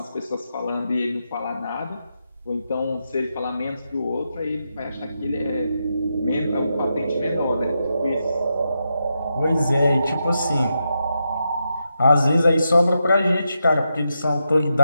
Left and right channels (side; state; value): both; inverted; correlation -0.85